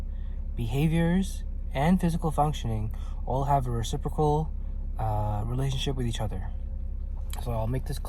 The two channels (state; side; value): identical; both; correlation 1.00